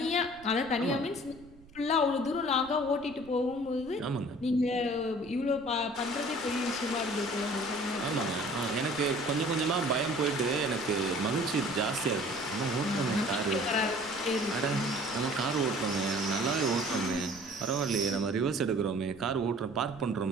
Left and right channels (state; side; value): noise; right; rumble, 23 dB below the sound